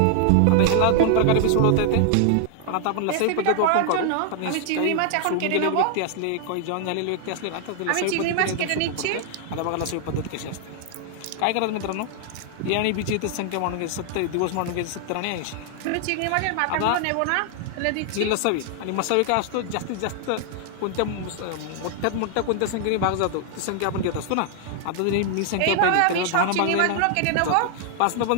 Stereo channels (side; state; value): both; different; correlation 0.00